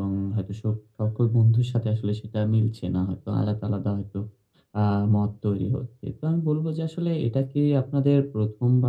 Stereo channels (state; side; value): identical; both; correlation 1.00